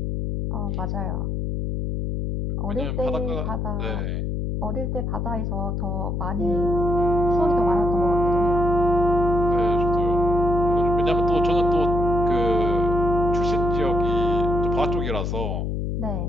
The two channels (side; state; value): left; noise; hum, 1 dB below the sound